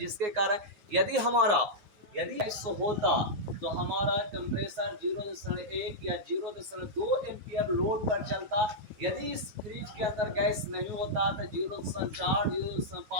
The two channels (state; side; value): late; left; 9.2 ms